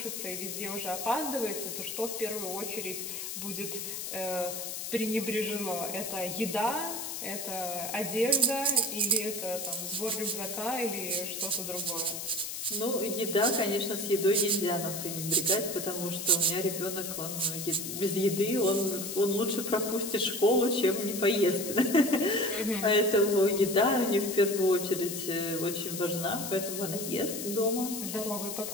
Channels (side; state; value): left; noise; hiss, 6 dB below the sound